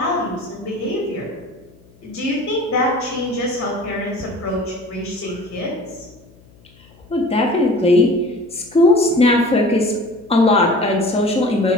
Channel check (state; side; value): noise; left; hum, 28 dB below the sound